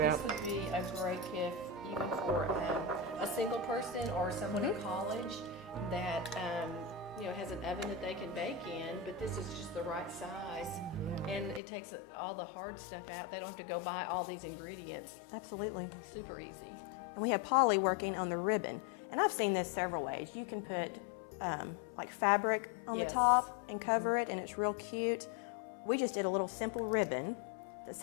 this out. would be a great gift even for a single person or someone in college that has an oven that they can bake in, but this is just the right size. And it takes all the hard stuff out. They don't have to go buy all these ingredients. Absolutely. Super easy. And we have Polly working on the ribbon. And I've seen this several ways. You can put like fabric on the top and cover it, and it's real cute. We just did a little simple ribbon that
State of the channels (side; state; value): right; drops out; at 11.6 s